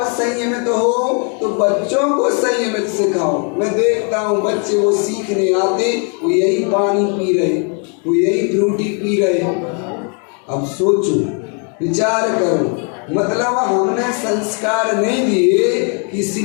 संयमित हो तो बच्चों को संयमित सिखाओ। मैं देखता हूँ बच्चे वो सीखने आते, वो यही पानी पी रहे, वो यही फ्रूटी पी रहे। अब सोचो, विचार करो, मतलब हमने संस्कार नहीं दिए कि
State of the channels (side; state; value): right; quieter; 39.4 dB